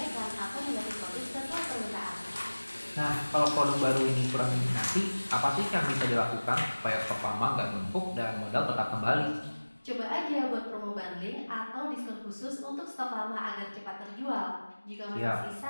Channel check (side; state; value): both; inverted; correlation -1.00